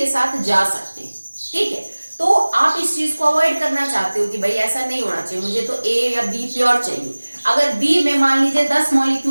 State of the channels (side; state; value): both; inverted; correlation -1.00